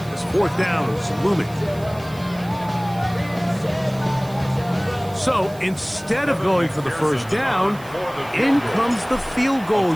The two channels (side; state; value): right; noise; hiss, 22 dB below the sound